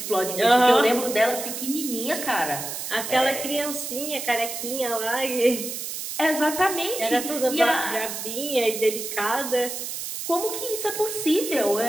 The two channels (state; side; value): noise; right; hiss, 6 dB below the sound